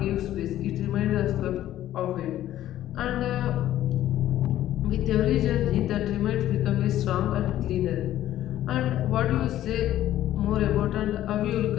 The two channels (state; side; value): quieter; right; 13.1 dB